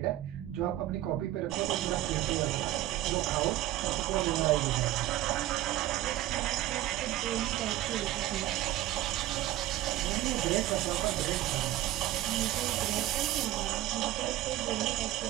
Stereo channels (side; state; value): left; quieter; 14.8 dB